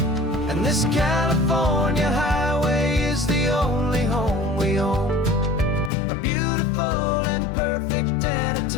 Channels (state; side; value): drops out; right; at 5.9 s